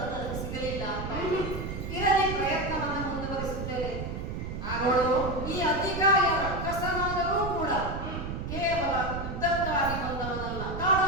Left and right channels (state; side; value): noise; right; rumble, 5 dB below the sound